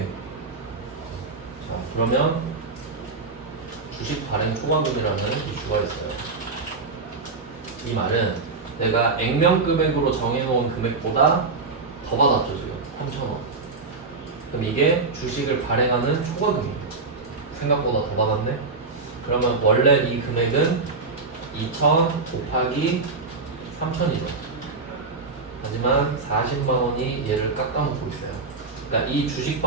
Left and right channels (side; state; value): left; quieter; 4.1 dB